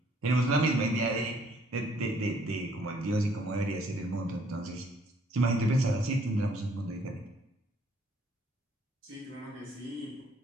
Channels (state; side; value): normal; both; correlation 0.63